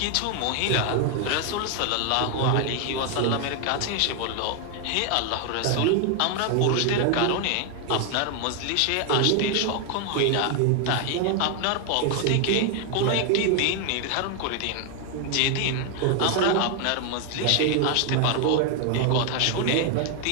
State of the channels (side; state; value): both; different; correlation 0.00